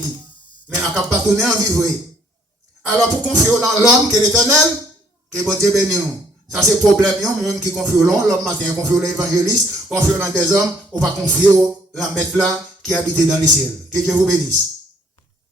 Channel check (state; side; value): normal; both; correlation 0.64